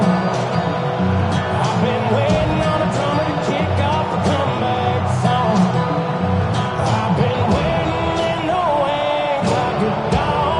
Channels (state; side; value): identical; both; correlation 1.00